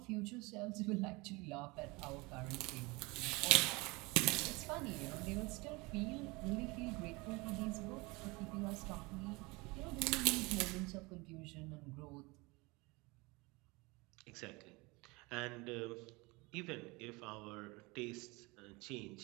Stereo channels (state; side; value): quieter; left; 25.0 dB